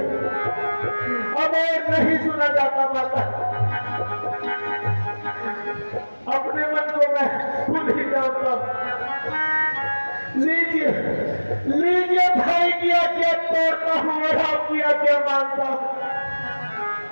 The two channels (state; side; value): inverted; both; correlation -1.00